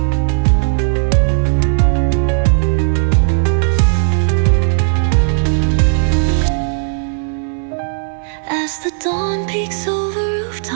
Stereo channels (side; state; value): left; silent; 59 dB below the other